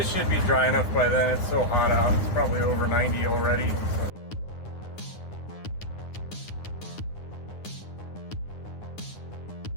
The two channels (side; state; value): right; late; 9.7 ms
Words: should be dry enough by then. It's so hot out, it's probably over 90 already. So.